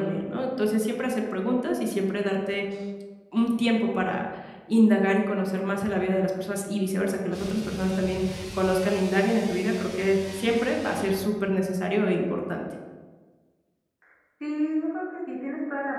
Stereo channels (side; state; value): both; identical; correlation 1.00